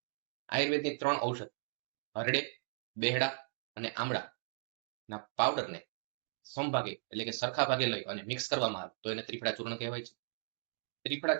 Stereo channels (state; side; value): silent; left; digital silence